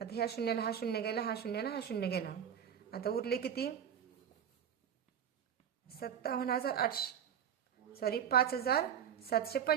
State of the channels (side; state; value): left; quieter; 8.7 dB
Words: ह्या शून्याला हा शून्य गेला, हा शून्याला हा शून्य गेला। आता उरले किती?